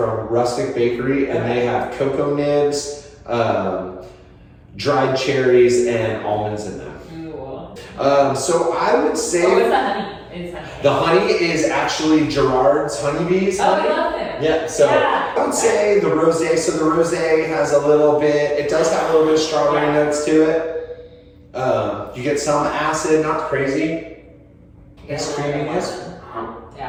Rustic Bakery, and they have cocoa nibs, dried cherries, and almonds in them. So I would say... Oh, what's the honey? The honey is actually Gerard's honeybees. I love it. Yeah, so I would say the rosé. So the rosé has a little bit, it does have a little bit of strawberry notes to it. You get some acid, not crazy. It's creaminess.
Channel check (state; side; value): identical; both; correlation 1.00